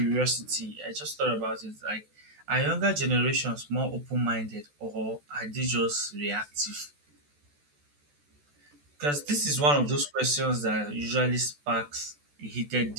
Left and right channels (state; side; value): late; left; 14 ms